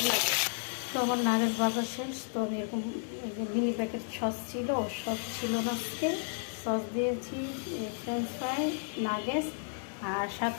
লাগে। তো আমার নাগেটস বাজার শেষ। তো আমি এরকম মিনি প্যাকেট সস ছিল, সস ছিল না আজকে। সস দিয়েছি, ফ্রেঞ্চ ফ্রাই, নাগেটস আর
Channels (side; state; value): right; silent; digital silence